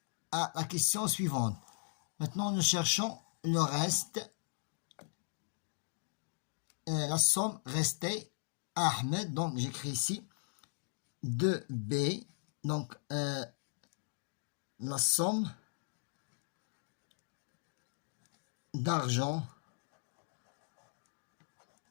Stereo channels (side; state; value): right; silent; digital silence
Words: la question suivante. Maintenant, nous cherchons le reste. La somme restée à Ahmed. Donc, j'écris ici 2B. Donc, la somme d'argent